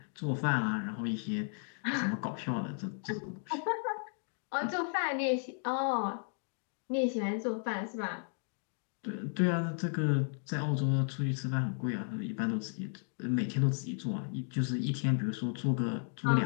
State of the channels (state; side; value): silent; right; 55 dB below the other